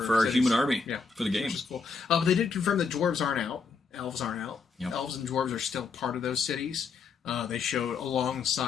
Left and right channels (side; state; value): right; quieter; 5.0 dB